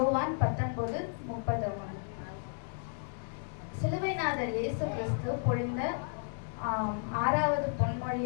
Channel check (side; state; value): right; silent; digital silence